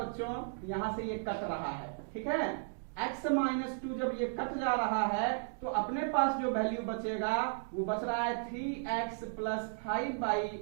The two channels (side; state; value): left; silent; digital silence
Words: यहां से ये कट रहा है, ठीक है। x माइनस 2 जब ये कट जा रहा है, तो अपने पास जो वैल्यू बचेगा वो बच रहा है 3x plus 5 by